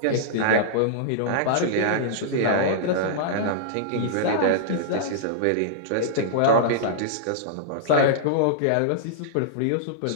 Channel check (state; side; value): different; both; correlation -0.02